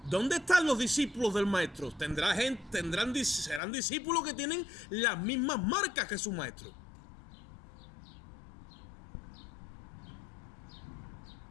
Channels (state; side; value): drops out; right; at 3.6 s